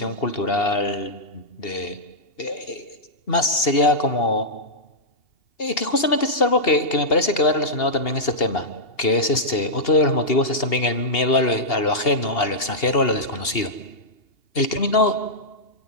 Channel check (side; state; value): right; late; 2.8 ms